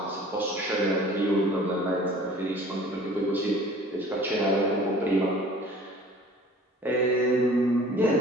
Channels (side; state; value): both; normal; correlation 0.48